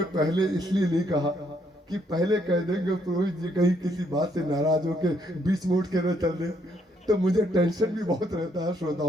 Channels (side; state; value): both; normal; correlation 0.71